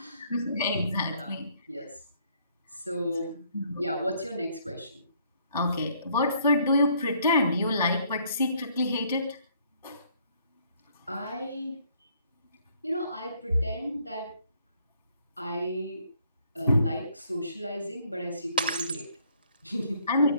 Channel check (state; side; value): inverted; both; correlation -0.65